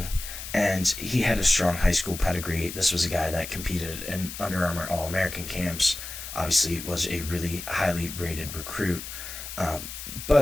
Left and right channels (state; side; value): noise; left; hiss, 9 dB below the sound